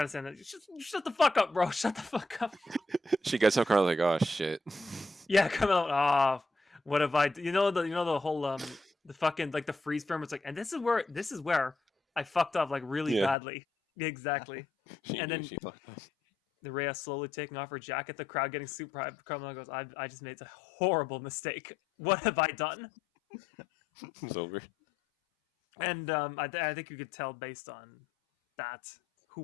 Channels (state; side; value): drops out; right; at 13.4 s